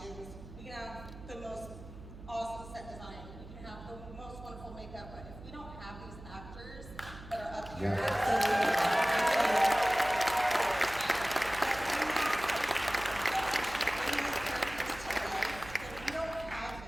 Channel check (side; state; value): right; noise; hum, 15 dB below the sound